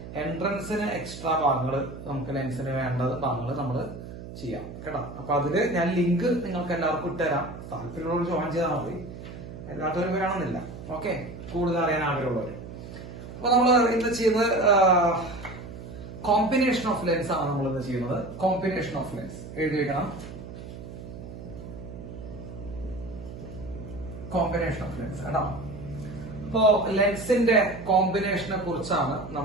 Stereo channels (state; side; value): noise; right; hum, 12 dB below the sound